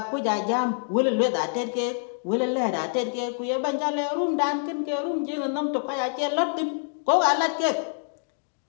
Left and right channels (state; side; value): silent; right; digital silence